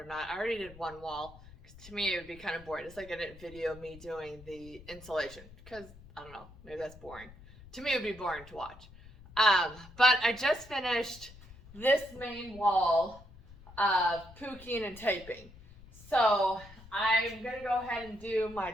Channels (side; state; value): left; noise; rumble, 20 dB below the sound